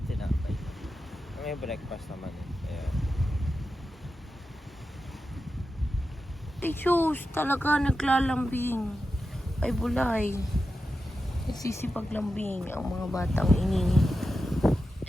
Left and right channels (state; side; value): normal; both; correlation 0.90